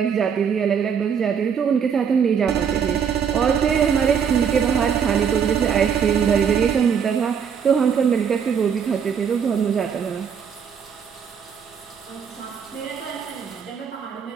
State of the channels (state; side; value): quieter; left; 7.2 dB